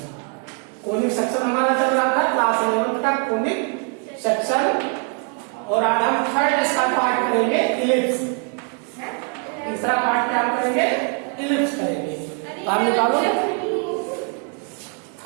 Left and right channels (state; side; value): quieter; left; 40.0 dB